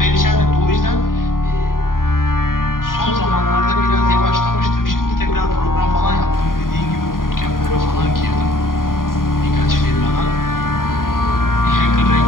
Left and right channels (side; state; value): right; late; 0.91 ms